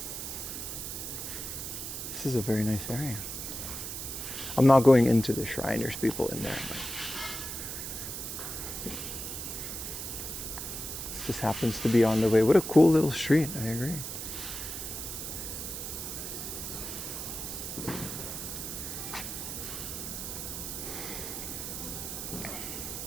This is a very nice area. I'm not going into the shrine, there's people in there. But this just happens to be on the way. What a cool little street, I agree.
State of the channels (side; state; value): right; noise; hiss, 6 dB below the sound